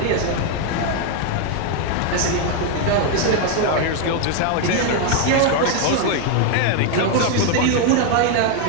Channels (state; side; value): different; both; correlation 0.01